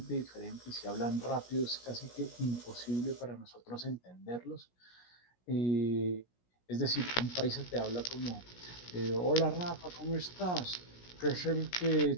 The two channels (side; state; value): right; late; 17 ms